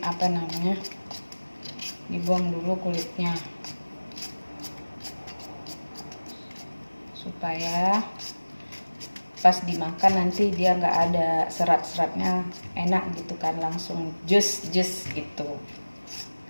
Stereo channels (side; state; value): both; inverted; correlation -1.00